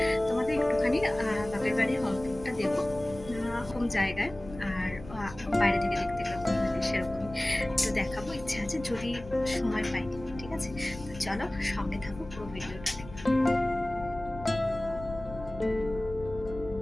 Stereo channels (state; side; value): noise; left; rumble, 15 dB below the sound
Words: তোমাদের একটুখানি বাপের বাড়ির হোম টুরটা দেবো, হোম জায়গায়, আর বাইরে থেকে দেখতে কেমন লাগে সেরকমই তো দেখাবো। ইচ্ছা আছে যদি সময় পাই, ঠিক আছে? তো চলো সঙ্গে থাকো, পুরো ভিডিওটা দেখো।